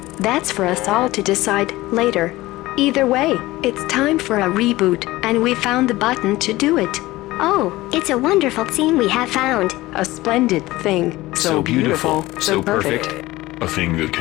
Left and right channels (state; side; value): quieter; right; 18.4 dB